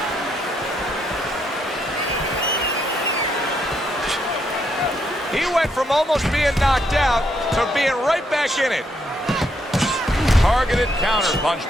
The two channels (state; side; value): normal; both; correlation 0.76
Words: He went from almost being knocked out to being right back in it. Targeted